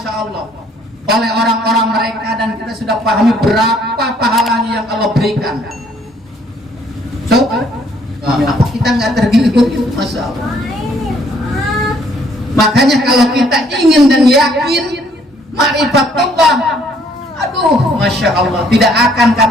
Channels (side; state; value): both; normal; correlation 0.64